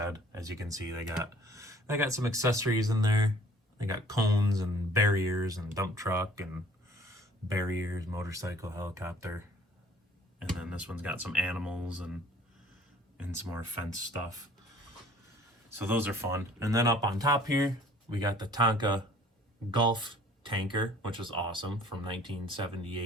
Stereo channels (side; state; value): both; normal; correlation 0.53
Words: As you can see, they got some accessories in there. They got cones and barriers and dump truck and barriers, motorcycle, helicopter. And then this one's got some animals and some more fence stuff. So those are fun. And then up on top here, we got the Tonka Gulf tanker, which is awesome, from